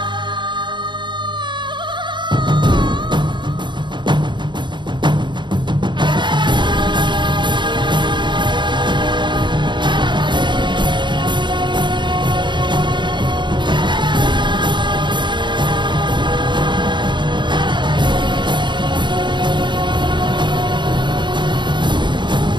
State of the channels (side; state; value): left; late; 0.22 ms